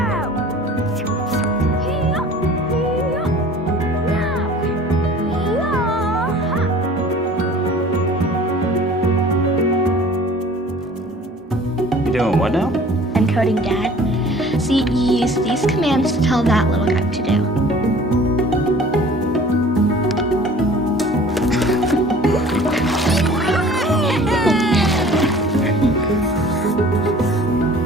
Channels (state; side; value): normal; both; correlation 0.47